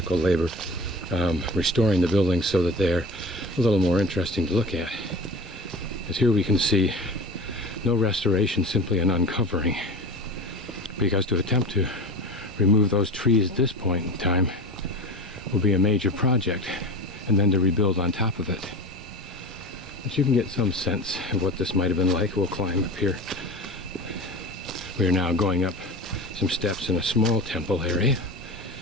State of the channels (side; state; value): both; normal; correlation 0.33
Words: labor restoring the buildings so that they're a little more interesting to look at. As here we can see no restoration, simply an uncovering, because to attempt to remove those trees at this point in time will be a major project, and then to rebuild on top of it. But you can get some sense of what this might have been like. We'll climb up here. We are now going up some steps in a small temple area.